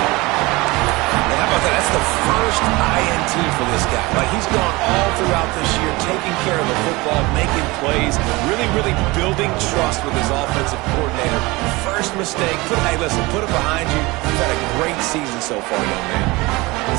And how about that? That's the first INT for this guy. Like, he's gone all throughout this year, taking care of the football, making plays, really building trust with his offensive coordinator. First mistake. Hey, listen, put it behind you. You've had a great season so far, young man.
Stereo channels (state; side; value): quieter; left; 22.8 dB